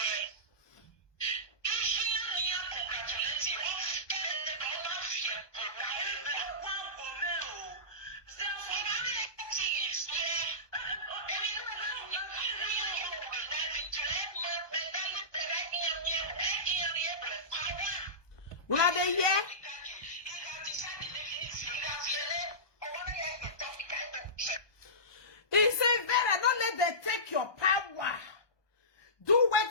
Will I be here? He said, Vera, don't let them take your power. Do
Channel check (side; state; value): right; late; 1.2 ms